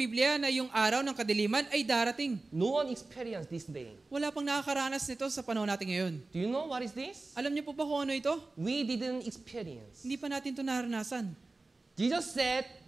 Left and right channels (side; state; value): left; quieter; 3.3 dB